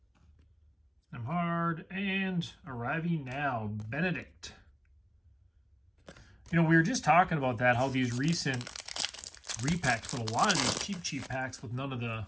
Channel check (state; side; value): identical; both; correlation 1.00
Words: Nemhard, and arriving now, Benedict. You know, we were just talking about that, how these recent repacks, but a lot of these cheap packs with none of the,